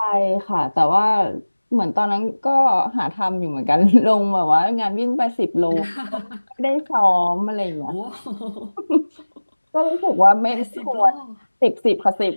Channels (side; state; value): both; inverted; correlation -1.00